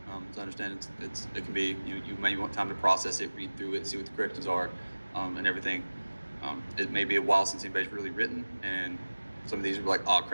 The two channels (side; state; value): both; inverted; correlation -1.00